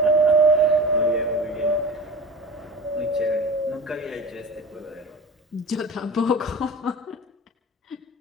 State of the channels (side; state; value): both; normal; correlation 0.35